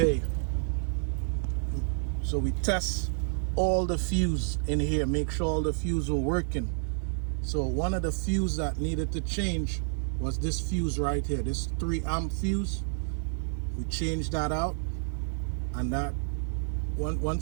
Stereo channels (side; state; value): left; silent; 56 dB below the other